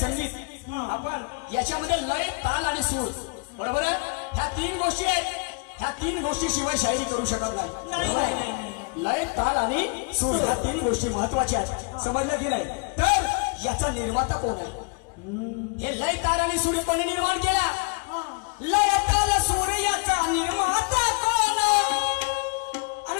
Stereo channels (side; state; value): right; quieter; 33.2 dB